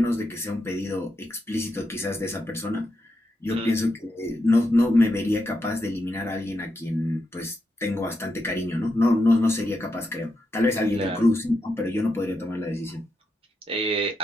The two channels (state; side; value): normal; both; correlation 0.84